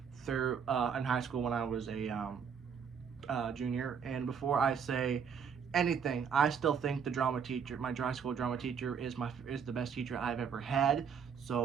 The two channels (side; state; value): left; quieter; 6.9 dB